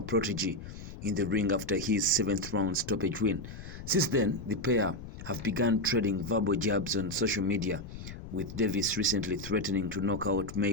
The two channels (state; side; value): noise; left; rumble, 12 dB below the sound